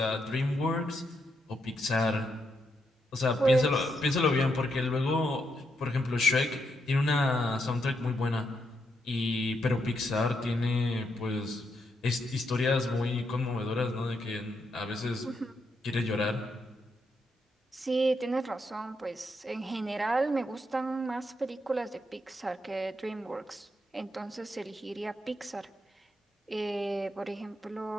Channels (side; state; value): both; normal; correlation 0.80